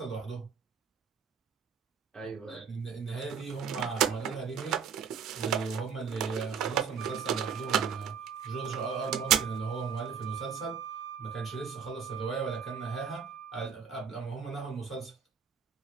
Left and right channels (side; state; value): left; quieter; 6.8 dB